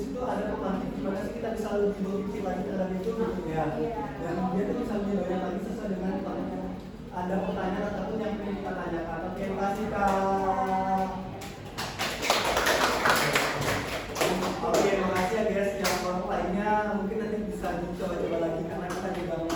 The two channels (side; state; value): both; identical; correlation 1.00